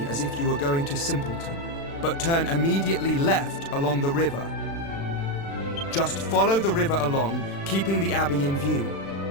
as if you were going to Simpleton, but turn immediately left along the river. Just follow the river along, keeping the abbey in view.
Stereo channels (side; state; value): right; late; 36 ms